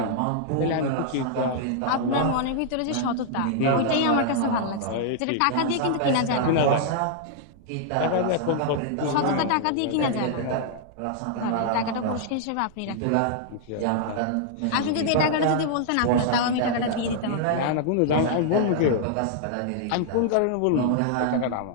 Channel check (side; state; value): both; different; correlation -0.01